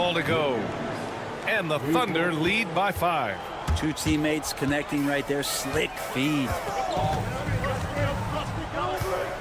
to go. And the Thunder lead by 5. 2 teammates connecting right there. Slick feed.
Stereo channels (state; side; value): identical; both; correlation 1.00